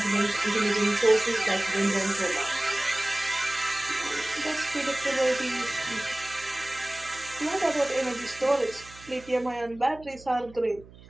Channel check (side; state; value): right; noise; hum, 21 dB below the sound